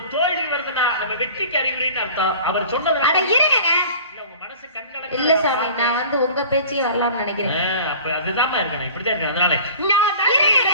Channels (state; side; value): inverted; both; correlation -0.43